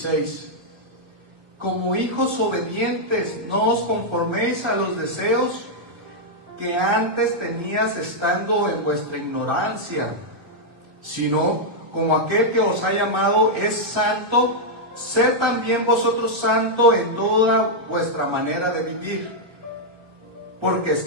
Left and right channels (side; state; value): left; late; 1.3 ms